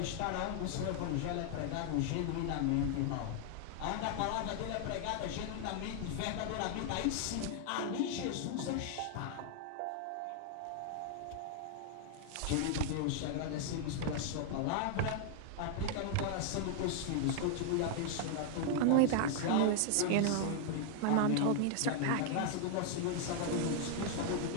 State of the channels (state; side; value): different; both; correlation 0.00